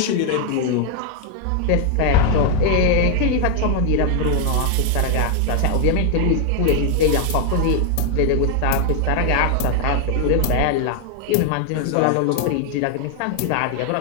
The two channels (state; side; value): different; both; correlation 0.01